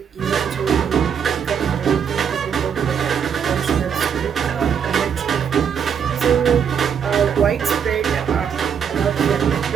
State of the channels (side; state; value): left; quieter; 7.6 dB